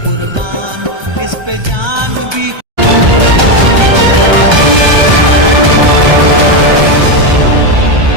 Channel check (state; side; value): late; left; 1.3 ms